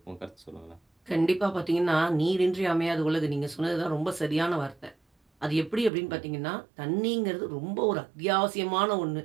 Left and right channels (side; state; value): left; drops out; at 5.9 s